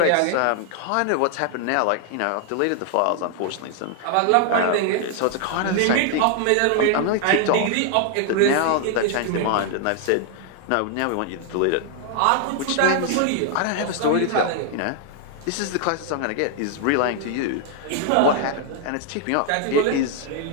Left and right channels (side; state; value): both; different; correlation 0.00